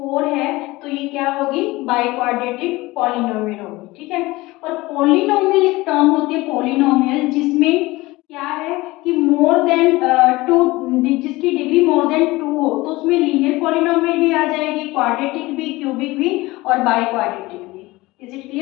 है। तो ये क्या होगी? बाय क्वाड्रेटिक पॉलिनोमियल होगी। ठीक है, और पॉलिनोमियल एक टर्म होती है पॉलिनोमियल जिसमें क्या है कि मोर देन 2, जिसकी डिग्री मोर देन 2 हो, तो उसमें लीनियर पॉलिनोमियल भी आ जाएगी, क्वाड्रेटिक भी, क्यूबिक भी और बाय क्वाड्रेटिक भी। Is it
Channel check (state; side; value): quieter; right; 20.4 dB